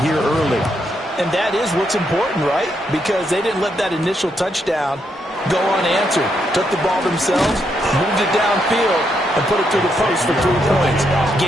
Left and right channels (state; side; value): normal; both; correlation 0.78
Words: here early. And that is what's important, right? Because they didn't let that initial touchdown go unanswered. Took the ball themselves, moved it downfield, and put it through the post for 3 points.